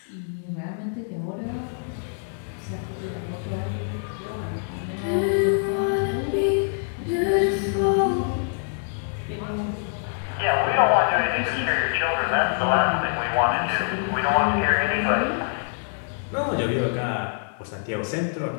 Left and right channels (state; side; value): silent; right; digital silence